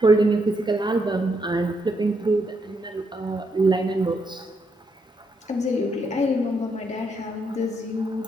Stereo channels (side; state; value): both; normal; correlation 0.78